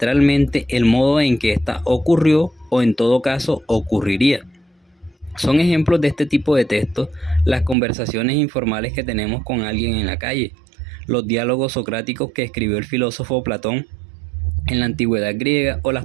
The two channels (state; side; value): drops out; left; at 7.8 s